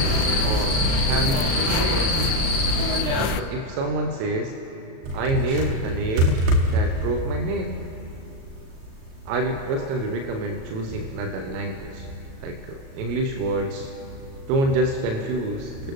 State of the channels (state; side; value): late; left; 37 ms